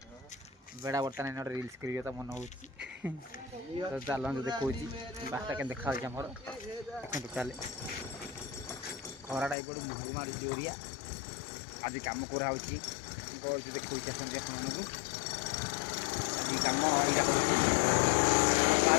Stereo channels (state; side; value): drops out; right; at 9.6 s